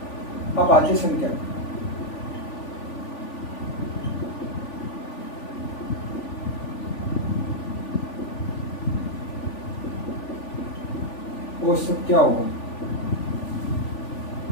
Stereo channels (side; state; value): right; late; 3.5 ms